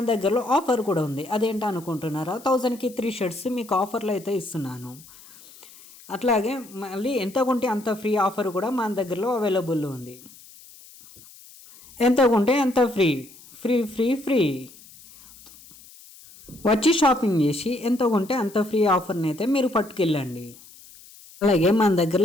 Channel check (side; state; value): left; noise; hiss, 22 dB below the sound